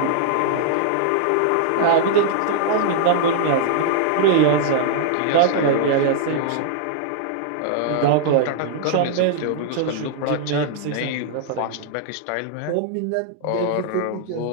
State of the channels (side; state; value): both; different; correlation -0.01